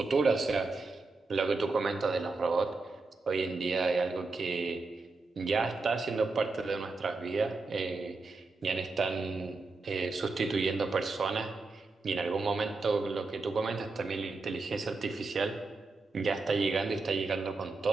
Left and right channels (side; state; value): left; quieter; 3.7 dB